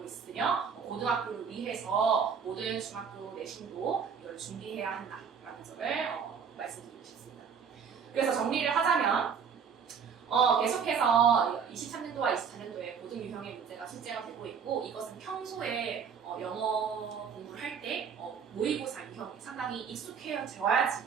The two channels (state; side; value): quieter; left; 6.7 dB